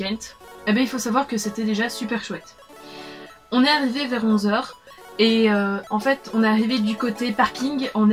Eh bien il faut savoir que c'était déjà super chouette. On est arrivé vers 11 h. Et en fait on est arrivé du côté parking, on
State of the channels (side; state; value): both; identical; correlation 1.00